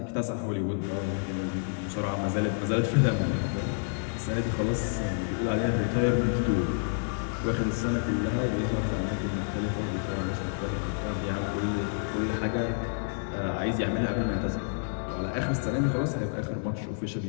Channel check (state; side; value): silent; right; digital silence